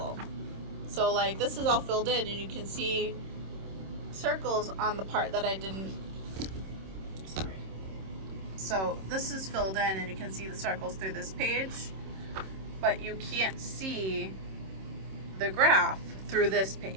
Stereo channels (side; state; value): left; late; 26 ms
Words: So this is all filled in and you can see circles on the part that I didn't, sorry. So this is filled in and you can see the circles through this page, but you can't see the graph through this